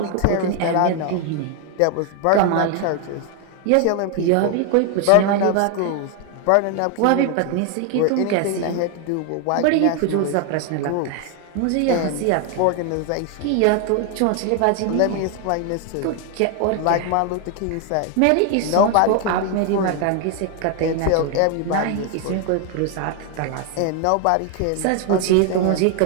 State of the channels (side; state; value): both; different; correlation 0.01